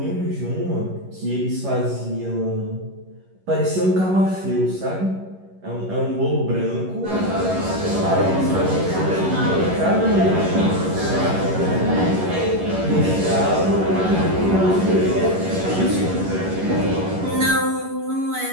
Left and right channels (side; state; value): left; late; 11 ms